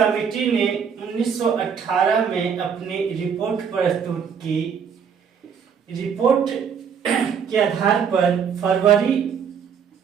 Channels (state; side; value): quieter; left; 7.1 dB